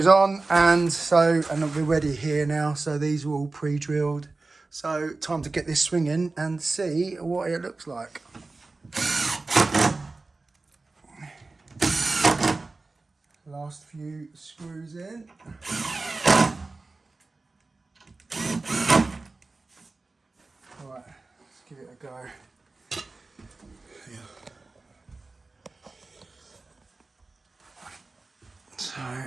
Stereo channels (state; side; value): quieter; left; 3.5 dB